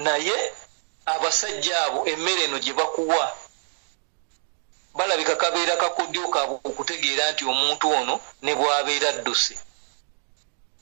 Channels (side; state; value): left; silent; digital silence